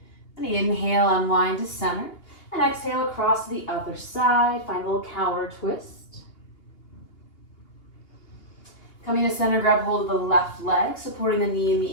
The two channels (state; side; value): late; right; 2.8 ms